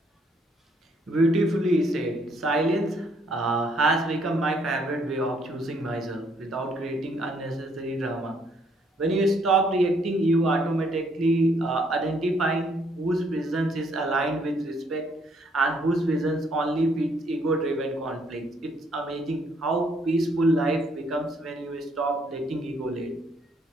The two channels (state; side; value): normal; both; correlation 0.68